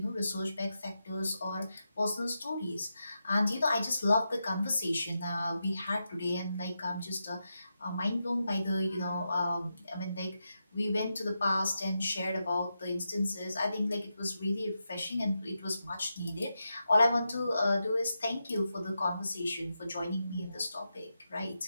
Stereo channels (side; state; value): both; inverted; correlation -0.88